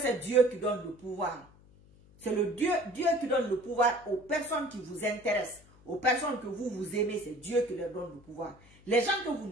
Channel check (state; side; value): noise; left; hum, 26 dB below the sound